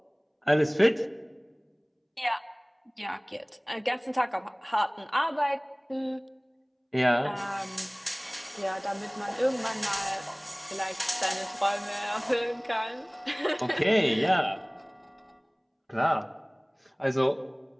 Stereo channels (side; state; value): both; identical; correlation 1.00